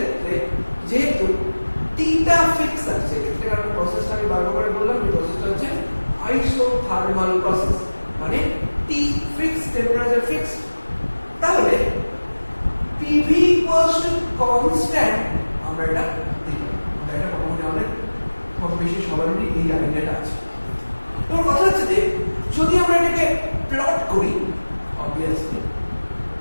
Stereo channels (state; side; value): inverted; both; correlation -1.00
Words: যেহেতু টিটা ফিক্স আছে, এক্ষেত্রে একটা প্রসেসটা আমি বারবার করে বললাম, এই প্রসেসটা হচ্ছে আইসোথার্মাল প্রসেস, মানে টি ফিক্স, টেম্পারেচার ফিক্স। তাহলে PV কনস্ট্যান্ট আমরা এটা দেখলাম, এটা মোটামুটি আমাদের কম বেশি সবারই এই আইডিয়াটা আছে। এবার কথা হচ্ছে যে যদি আমরা এটাকে প্লট করি, অবভিয়াসলি